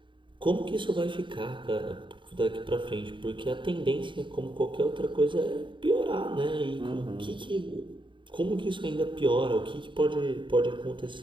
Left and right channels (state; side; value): late; left; 0.24 ms